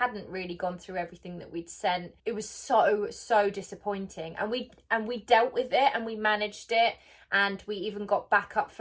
really gone through everything that we'd sent. It was so disappointing. And we dealt with it and we managed it. And we even got backup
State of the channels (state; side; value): identical; both; correlation 1.00